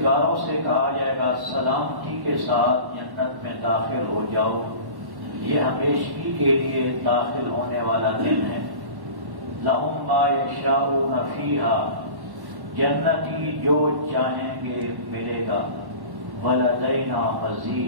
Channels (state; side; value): late; left; 1.1 ms